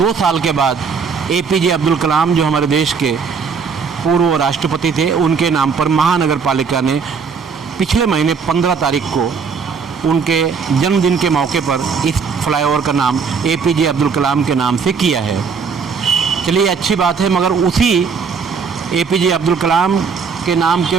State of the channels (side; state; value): left; quieter; 5.7 dB